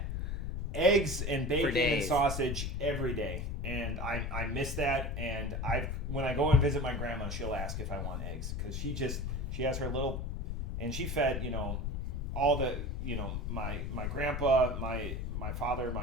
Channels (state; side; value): noise; left; rumble, 2 dB below the sound